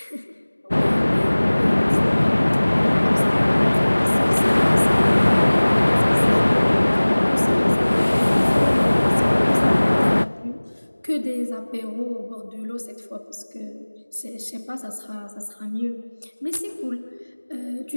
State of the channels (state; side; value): inverted; both; correlation -1.00